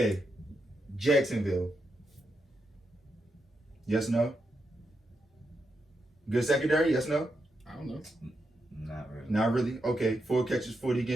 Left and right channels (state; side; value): normal; both; correlation 0.84